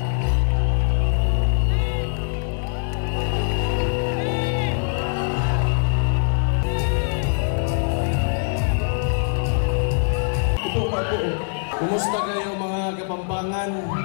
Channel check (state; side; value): silent; right; 60 dB below the other